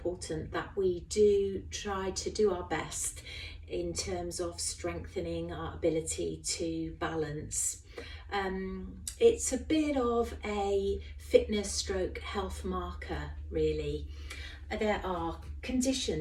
that we do try to do our best in terms of strengthening our ability to balance. It's a bit of a fitness stroke health marker, really. There are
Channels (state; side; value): identical; both; correlation 1.00